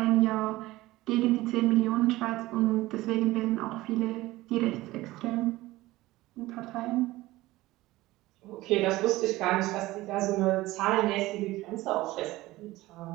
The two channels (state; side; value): quieter; left; 18.2 dB